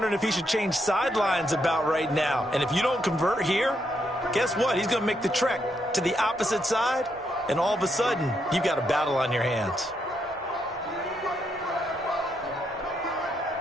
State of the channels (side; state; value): both; normal; correlation 0.78